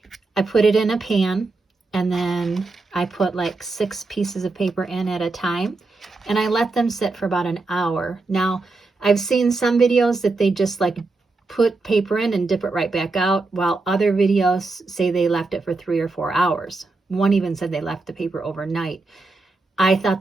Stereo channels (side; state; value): left; quieter; 3.5 dB